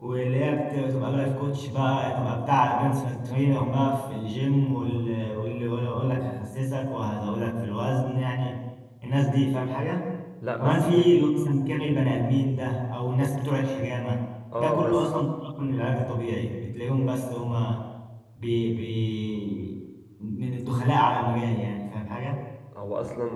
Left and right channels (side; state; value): both; identical; correlation 1.00